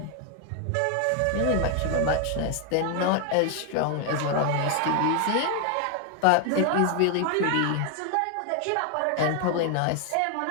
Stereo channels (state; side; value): different; both; correlation 0.00